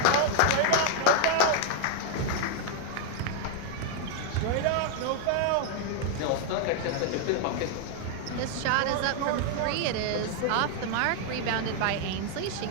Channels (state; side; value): different; both; correlation 0.00